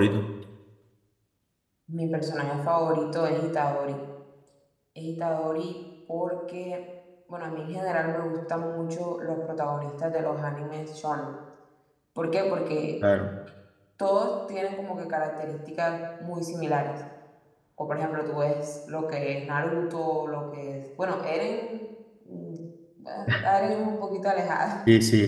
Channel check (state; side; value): identical; both; correlation 1.00